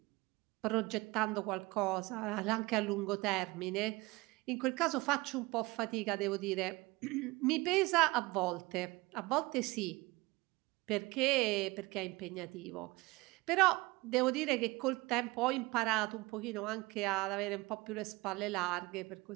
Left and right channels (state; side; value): quieter; left; 22.5 dB